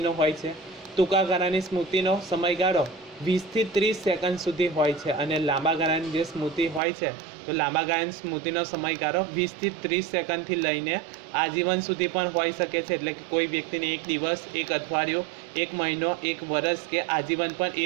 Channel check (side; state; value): left; drops out; at 6.8 s